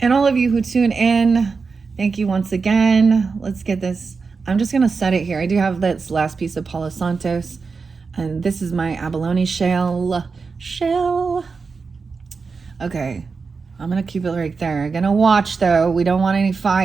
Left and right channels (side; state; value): left; quieter; 4.8 dB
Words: And all of you who tune in, thank you once again. Let's get this. I'm just going to set it here. I do have this last piece of Palo Santos. And this is my abalone shell. Okay, I'm going to keep it right there. I'm going to watch, though. We don't want any